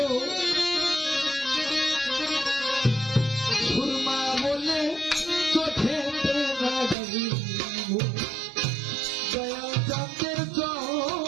সুরমা বলে চোখেতে লাগাইব দয়াল চাঁদের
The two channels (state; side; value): drops out; left; at 7.0 s